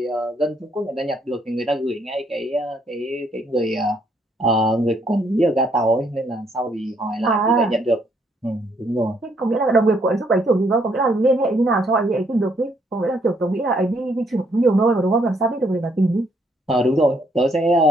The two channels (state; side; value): normal; both; correlation 0.70